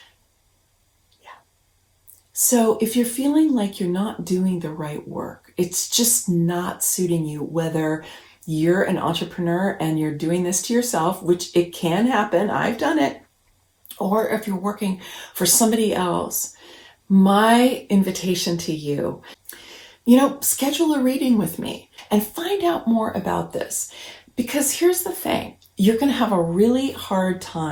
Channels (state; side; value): identical; both; correlation 1.00